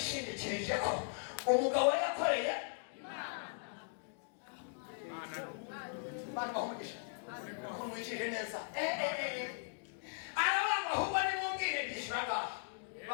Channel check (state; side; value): silent; right; digital silence